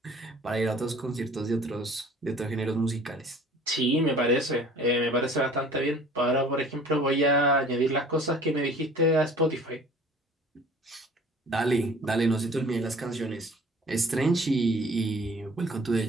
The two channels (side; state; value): both; normal; correlation 0.49